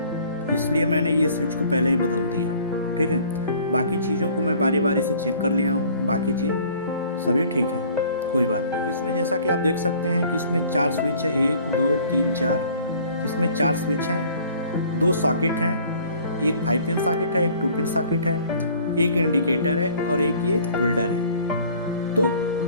इसलिए मैंने ये स्विच को पहले ही बदल दिया, ठीक है। बाकी चीज़ों को मैं बारी बारी से चेक कर लिया हूँ, बाकी चीज़ सभी ठीक है, कोई बात नहीं। तो इसमें जैसा कि आप देख सकते हैं कि इसमें 4 स्विच है, 1 2 3 4। इसमें 4 स्विच हैं, 2 सॉकेट हैं, एक 5 पिन सॉकेट है, एक 2 पिन सॉकेट है, एक इंडिकेटर है और एक ये होल्डर है। तो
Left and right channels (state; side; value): inverted; both; correlation -0.53